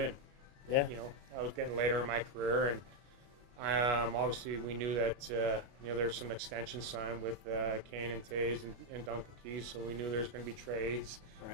Yeah. I was getting later in my career, and obviously we knew that there's some extensions signed with Kane and Tays and Duncan Keys, so we knew there's going to be trades.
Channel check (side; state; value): left; late; 33 ms